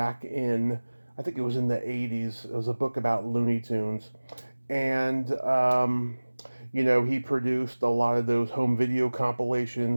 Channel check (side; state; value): both; inverted; correlation -1.00